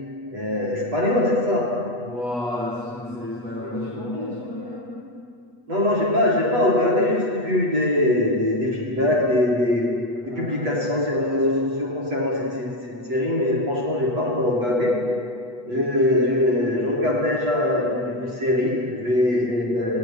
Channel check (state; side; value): late; left; 8.2 ms